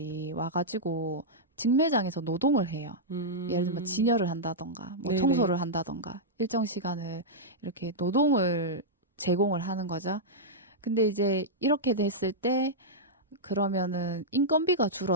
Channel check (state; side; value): normal; both; correlation -0.08